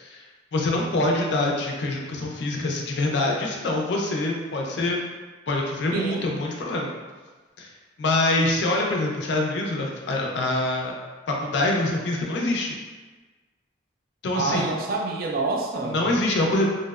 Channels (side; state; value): both; normal; correlation 0.32